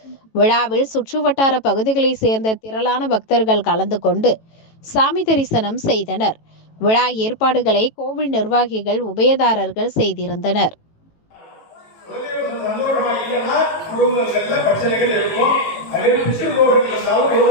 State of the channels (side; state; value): right; late; 18 ms